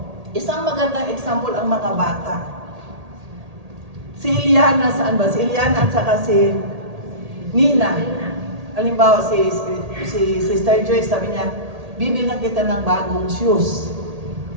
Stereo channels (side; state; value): left; late; 1.8 ms